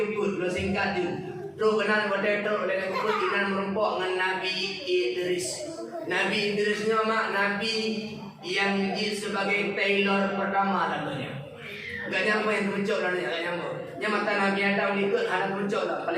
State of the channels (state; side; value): identical; both; correlation 1.00